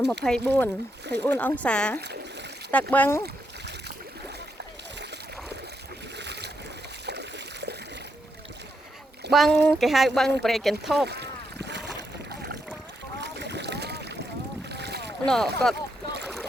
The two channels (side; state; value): both; normal; correlation 0.80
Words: 24អង្សាទឹកបឹងគេហៅបឹងប្រេកកន្ធប់នោះគាត់